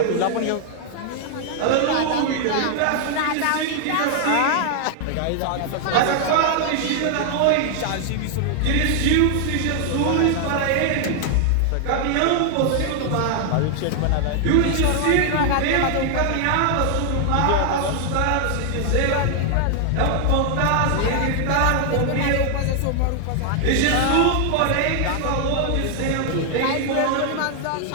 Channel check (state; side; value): different; both; correlation 0.00